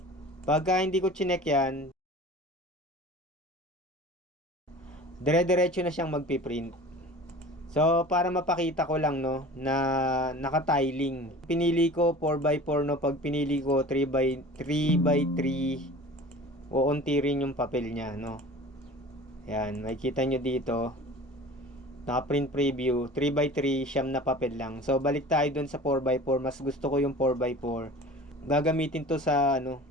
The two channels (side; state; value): both; normal; correlation 0.40